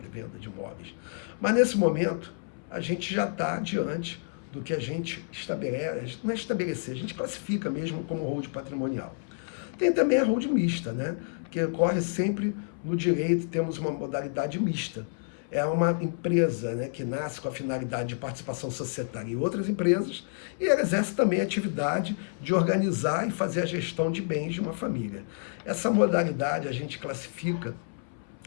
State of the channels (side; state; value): right; silent; 58 dB below the other